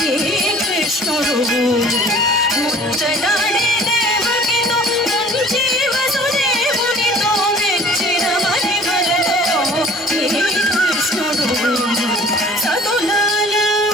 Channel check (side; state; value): both; normal; correlation 0.49